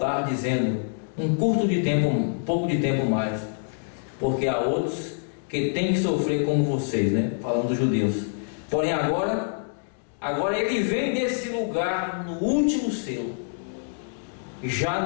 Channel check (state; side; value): silent; right; digital silence